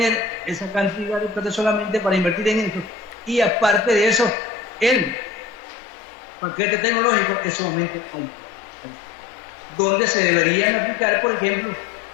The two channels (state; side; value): drops out; right; at 5.6 s